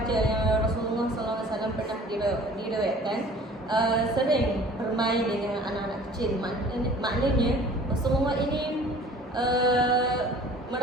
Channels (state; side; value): normal; both; correlation 0.48